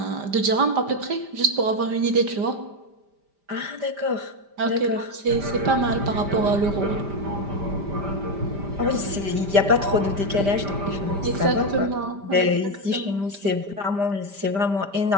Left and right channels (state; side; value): late; left; 5.0 ms